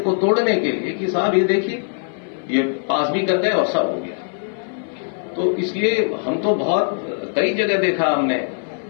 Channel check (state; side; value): silent; right; 57 dB below the other